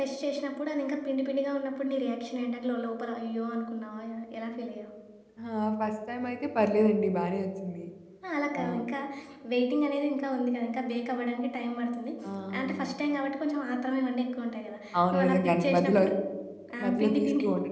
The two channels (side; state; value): both; identical; correlation 1.00